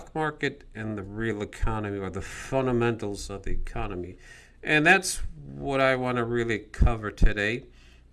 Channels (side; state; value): both; identical; correlation 1.00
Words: market and the real economy, or the fundamentals of the economy. And that's what I want to really cover today